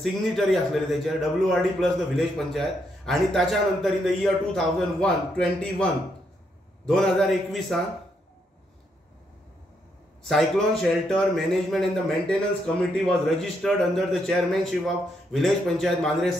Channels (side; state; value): both; normal; correlation 0.77